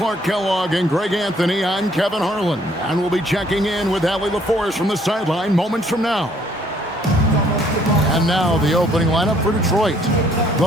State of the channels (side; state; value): both; normal; correlation 0.63